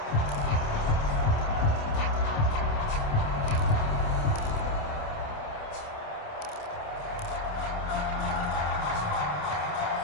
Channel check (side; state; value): right; late; 27 ms